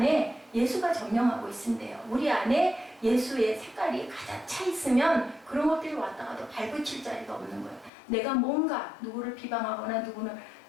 예수가 점령하고 있는데요. 우리 안에 예수의 색깔이 가득 차 있으면 그런 것들이 왔다가도 발붙일 자리가 없는 거예요. 내가 뭔가 누구를 비방하거나 누구는,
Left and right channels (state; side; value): drops out; right; at 7.9 s